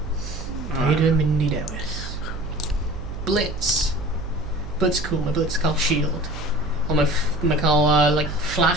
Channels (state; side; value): noise; right; hum, 9 dB below the sound